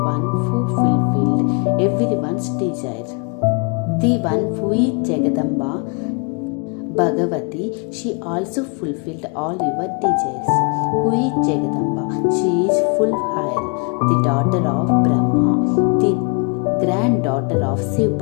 one who fulfilled everyone's desire. The one who is Jagadamba, Bhagavati, she also fulfilled all your desires. Who is Jagadamba? She is full higher, the daughter of Brahma, the granddaughter of Shiv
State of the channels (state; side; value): quieter; right; 34.7 dB